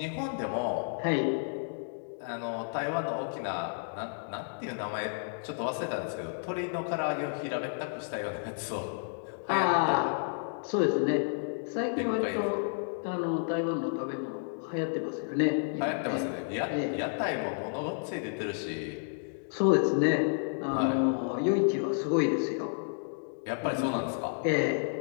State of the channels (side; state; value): right; silent; digital silence